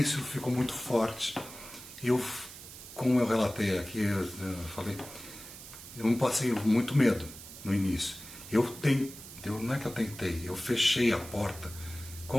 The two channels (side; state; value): right; noise; hiss, 14 dB below the sound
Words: ficou muito forte. Como eu relatei aqui, eu falei, eu não passei muito medo no início. Não é que eu tentei, eu fechei a porta